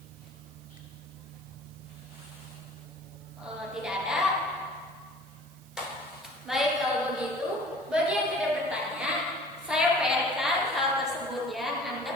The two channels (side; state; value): right; noise; hiss, 26 dB below the sound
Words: Tidak ada. Baik, kalau begitu, bagi yang tidak bertanya, saya PR-kan hal tersebut ya.